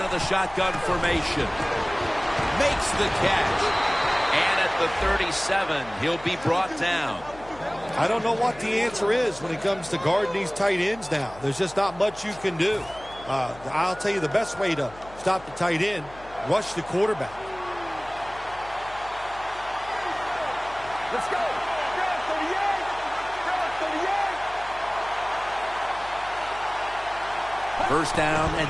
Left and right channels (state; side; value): noise; left; hum, 20 dB below the sound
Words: of the shotgun formation. Makes the catch. And at the 37, he'll be brought down. I don't know what the answer is when it comes to guarding these tight ends now. There's just not much you can do. I'll tell you the best way to stop the tight end, rush the quarterback. Let's go. First down